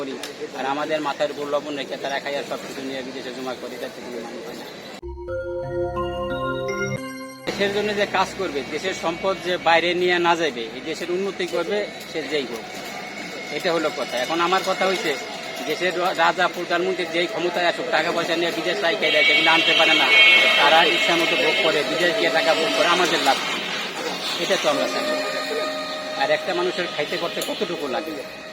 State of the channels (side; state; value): both; identical; correlation 1.00